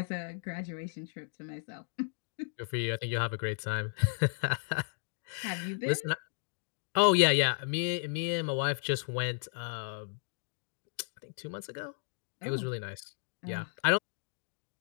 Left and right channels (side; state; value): right; silent; digital silence